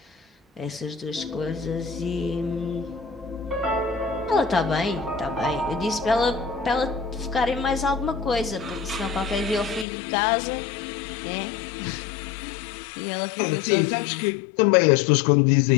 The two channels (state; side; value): drops out; right; at 9.9 s